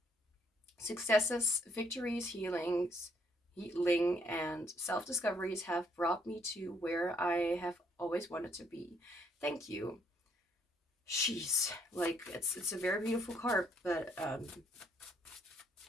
successes, victories, healing, and self-discoveries have brought me to where I have always wanted to be. Thank you. Jeez, like, it's a very beautiful card, but it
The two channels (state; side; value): normal; both; correlation 0.69